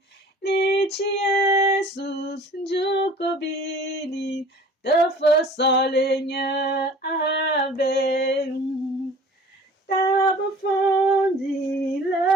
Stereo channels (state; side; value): normal; both; correlation 0.47